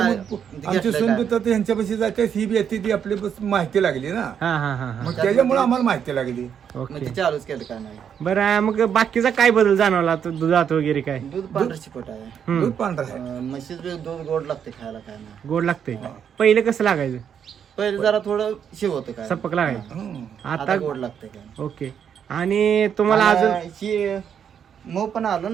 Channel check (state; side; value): quieter; left; 8.1 dB